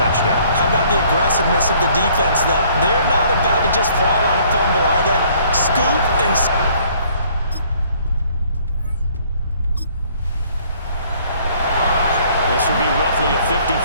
How about the aggressiveness of the defense, though? They're not about to just fall on a fumble, are they? Scoop and... This will be roughly a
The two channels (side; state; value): both; inverted; correlation -0.60